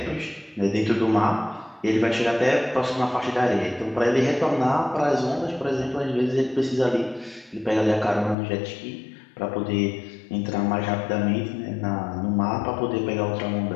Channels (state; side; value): drops out; right; at 8.3 s